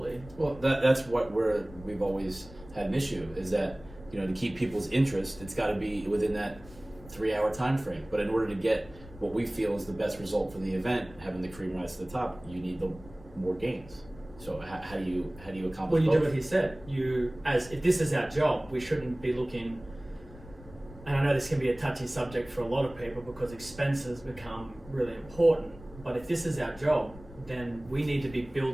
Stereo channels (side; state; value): left; noise; rumble, 19 dB below the sound